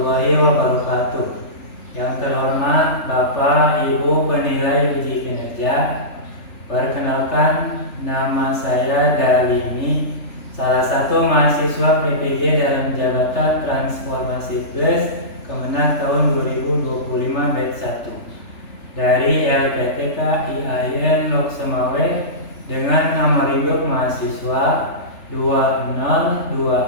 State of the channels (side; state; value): right; late; 3.4 ms